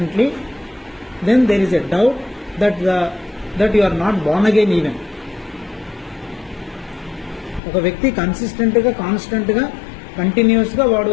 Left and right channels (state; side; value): drops out; right; at 7.6 s